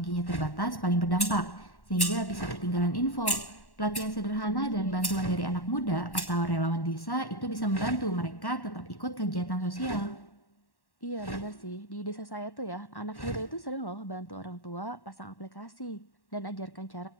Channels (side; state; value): right; late; 1.1 ms